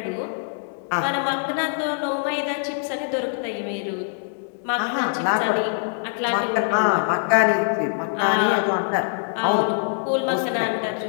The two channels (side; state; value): right; silent; digital silence